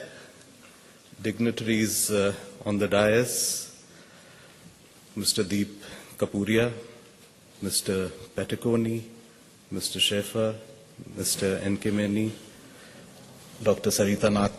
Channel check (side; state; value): both; identical; correlation 1.00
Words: dignitaries on the dais, Mr. Deep Kapuria, Mr. Peticoni, Mr. Schaefer, Mr. Nkemeni, Dr. Sarita